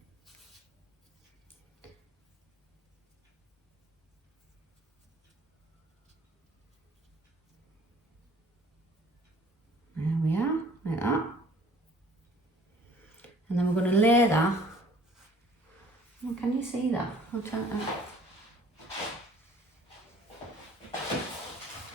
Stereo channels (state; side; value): normal; both; correlation 0.54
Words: There we are, like that. And then we're going to lay that. Oh, can you see that? I'll try that.